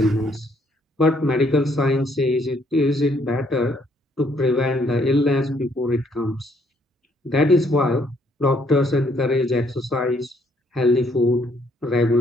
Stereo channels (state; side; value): normal; both; correlation 0.68